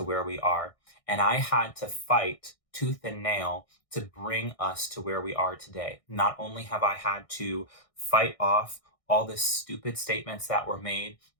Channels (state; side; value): late; right; 1.6 ms